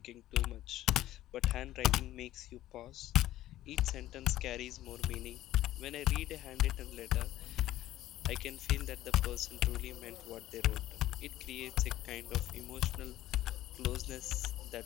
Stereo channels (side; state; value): right; quieter; 14.3 dB